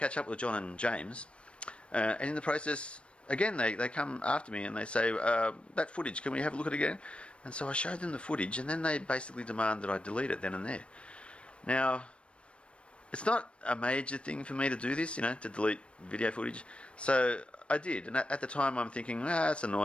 up with John and James, and in the process, again, they come after me and they say, that footage, can we have a look at it again? And so I showed them the footage, and then they basically demand that I delete it then and there. Now, it's not a major thing for me to do this, to delete video footage. So I did, and at the time I'm thinking, it's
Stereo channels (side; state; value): right; late; 0.059 ms